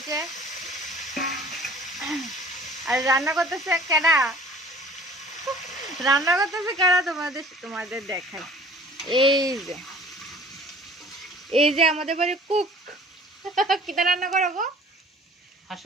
আর রান্না করতেছে কেডা? রান্না করতেছে কেডা? তোমাদের দেখাই। এই যে আমাদের বাড়ির কুক। কিতা রান্না করবো?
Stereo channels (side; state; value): both; normal; correlation 0.49